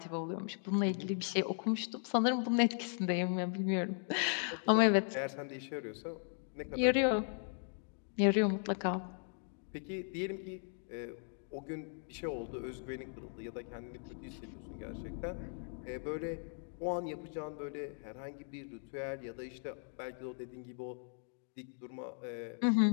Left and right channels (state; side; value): silent; right; 53 dB below the other